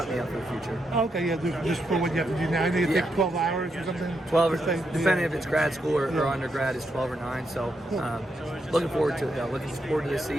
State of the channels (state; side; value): normal; both; correlation 0.82